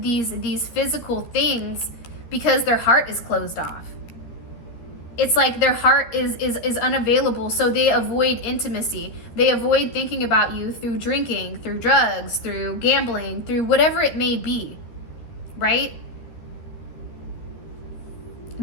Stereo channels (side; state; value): right; late; 13 ms